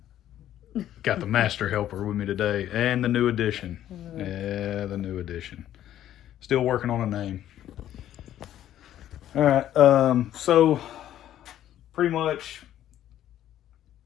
Got the master helper with me today and the new edition. Yeah, the new edition. Still working on a name. All right, so pretty much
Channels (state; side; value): quieter; right; 11.9 dB